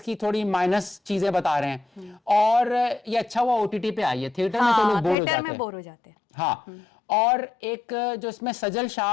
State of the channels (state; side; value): drops out; right; at 5.2 s